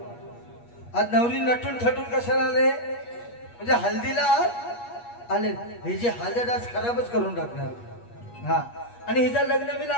आज नवरी नटून थटून कशाला आले? म्हणजे हल्दीला आले, हे जे हळद आज खराबच करून टाकणार। हा आणि हिचं लग्न मी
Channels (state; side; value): late; right; 8.4 ms